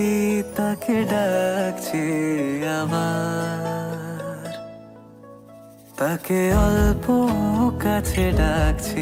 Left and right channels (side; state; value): both; identical; correlation 1.00